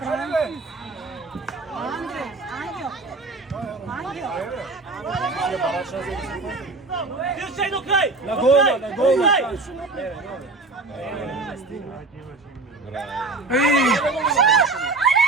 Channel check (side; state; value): left; quieter; 3.5 dB